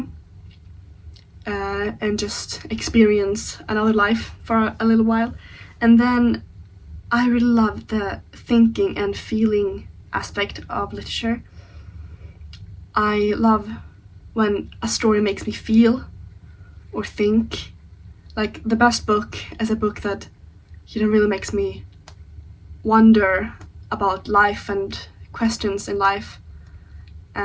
and just experience another life for a little while. And then I really love the thinking and feeling aspect of literature. I love when a story makes me feel or think. Like, the best book is a book that, you know, really makes me wonder about life and questions in life,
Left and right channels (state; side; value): identical; both; correlation 1.00